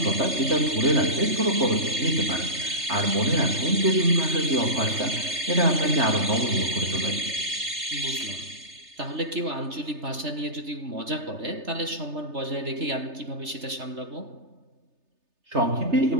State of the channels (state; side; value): late; left; 3.3 ms